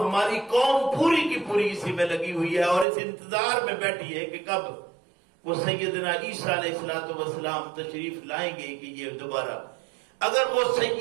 قوم پوری کی پوری اسی میں لگی ہوئی ہے اور اس انتظار میں بیٹھی ہے کہ کب وہ سیدنا عیسیٰ علیہ السلام تشریف لائیں گے کہ یہ دوبارہ، اگر وہ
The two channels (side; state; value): left; drops out; at 2.9 s